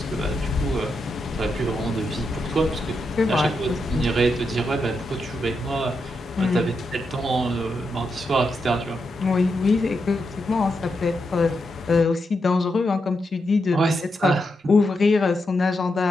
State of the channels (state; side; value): normal; both; correlation 0.84